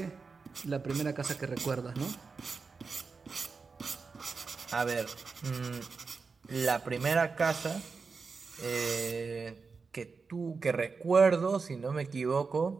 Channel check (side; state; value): left; quieter; 4.8 dB